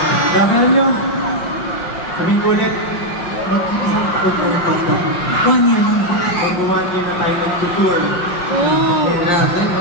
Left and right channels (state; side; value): late; right; 5.6 ms